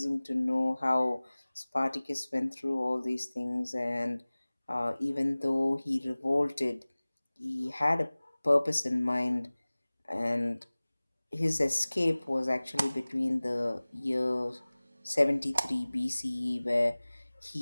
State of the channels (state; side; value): inverted; both; correlation -1.00